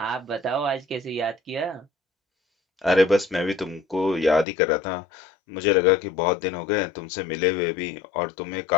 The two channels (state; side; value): drops out; right; at 4.5 s